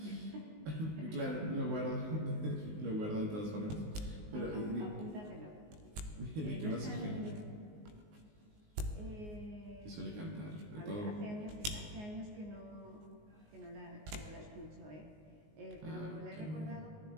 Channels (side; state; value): left; late; 19 ms